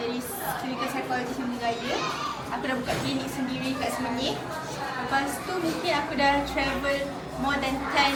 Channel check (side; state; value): both; identical; correlation 1.00